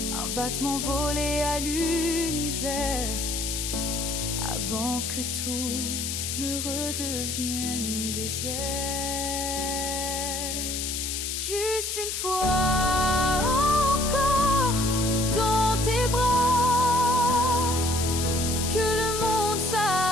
Un battement volé à l'univers, avant que tout ne redevienne désert. Juste une fois encore dans tes bras, que le monde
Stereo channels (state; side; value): noise; left; hiss, 3 dB below the sound